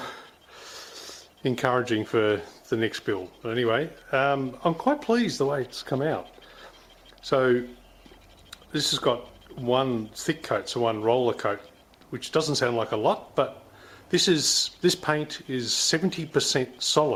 encouraging for the next build. But anyway, I'm quite pleased the way it's come out. So this has got one thick coat, so one roller coat, which doesn't sound like a lot, but this paint is 70%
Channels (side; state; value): both; identical; correlation 1.00